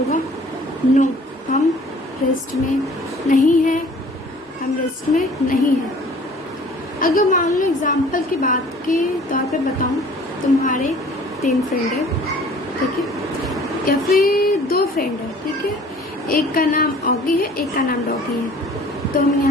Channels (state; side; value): normal; both; correlation 0.50